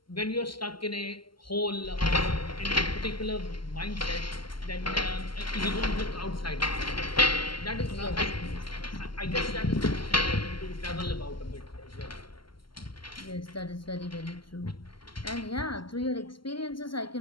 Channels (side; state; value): right; late; 0.73 ms